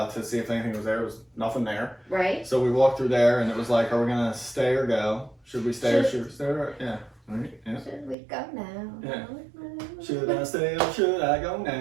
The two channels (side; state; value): left; drops out; at 8.2 s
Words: to see if anything was there. There was nothing there. Right? So we walked through there, and it was like, are we gonna stay or go? Should we stay or should we stay? Yeah. Right. Yeah. Should we go now? Yeah. Should I stay or should I go